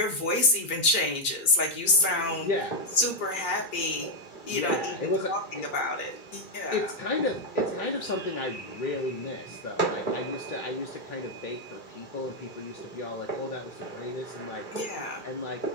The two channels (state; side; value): late; right; 2.3 ms